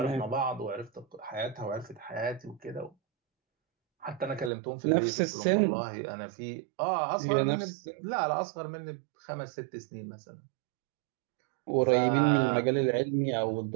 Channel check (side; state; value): left; drops out; at 4.5 s